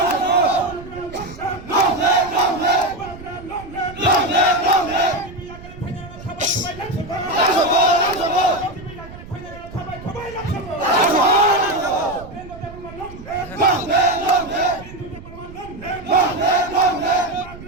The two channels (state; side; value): noise; right; rumble, 16 dB below the sound